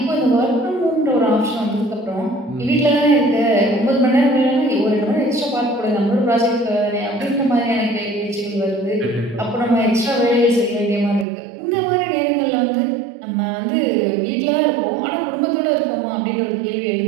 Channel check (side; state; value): left; drops out; at 11.2 s